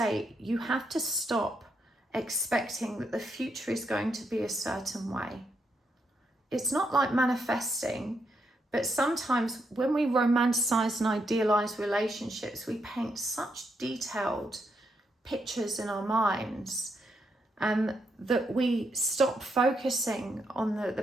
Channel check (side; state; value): both; normal; correlation 0.79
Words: you have to stop expecting that the future is going to be a certain way. It's not like manifesting, but sometimes when we romanticize and idealize relationships, we paint such detailed pictures in our minds that we stop focusing on